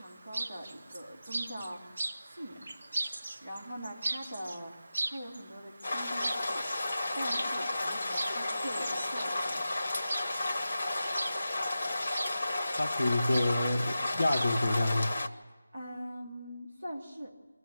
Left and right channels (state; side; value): inverted; both; correlation -0.93